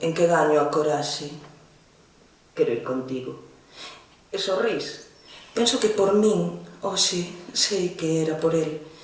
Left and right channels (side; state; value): both; identical; correlation 1.00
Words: en que gaño a coraxe. Quero ir contigo. E sorrís. Penso que por min, hoxe, sei que era por el.